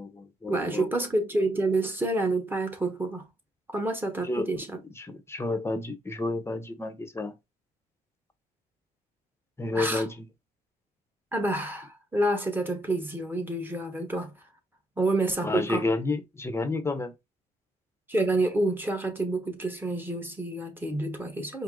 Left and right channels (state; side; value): normal; both; correlation 0.76